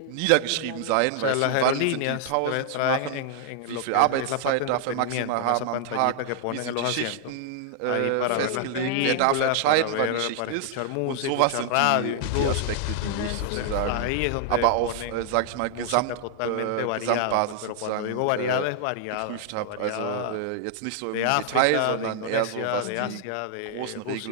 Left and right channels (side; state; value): both; different; correlation -0.01